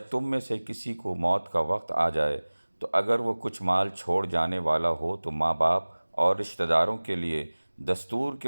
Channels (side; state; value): both; inverted; correlation -1.00